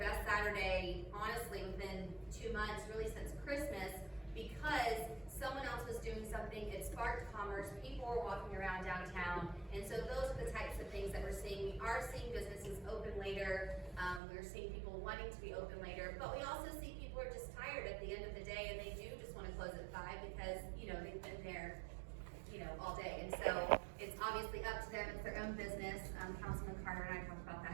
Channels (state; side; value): drops out; left; at 14.2 s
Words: Saturday, honestly, within 2 months, really since Christmas, because someone else was doing something. It sparked commerce. People were walking around downtown, and so those are the types of things that we're seeing. We are seeing businesses open later. We're seeing people wanting to be open later, but we also see people are just tired at the end of the day, and they do just want to close at 5 because, you know, they've been there, you know, all day. And so it's obviously up to them. It's their own business. Councilman Carter and I talked about